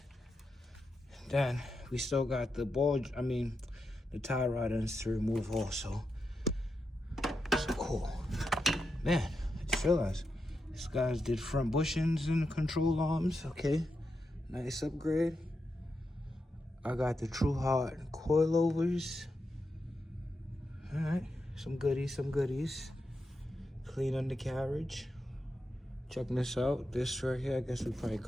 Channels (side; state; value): both; normal; correlation 0.87